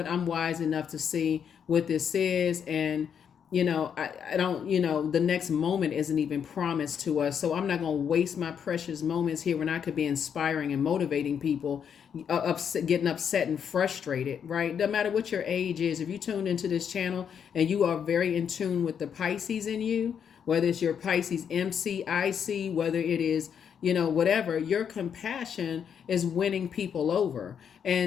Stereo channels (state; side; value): quieter; right; 7.8 dB